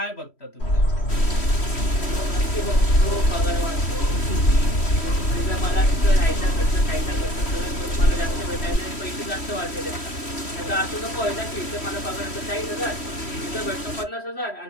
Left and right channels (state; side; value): late; right; 3.1 ms